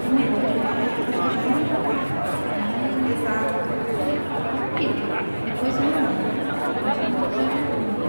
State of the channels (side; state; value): both; inverted; correlation -1.00